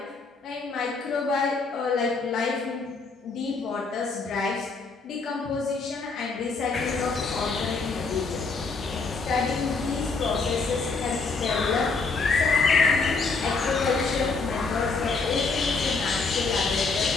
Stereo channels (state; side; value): quieter; right; 4.2 dB